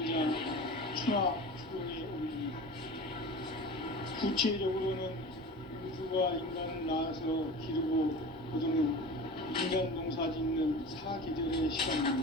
추락, 추동의 원리입니다. 구체적으로는 우주가 인간을 낳아서 기르고 거두는 인간 농사 짓는 사계절의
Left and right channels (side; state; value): both; normal; correlation 0.34